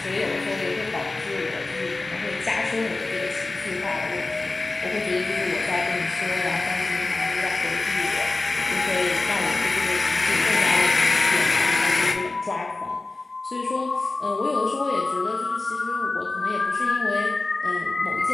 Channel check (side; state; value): right; quieter; 3.3 dB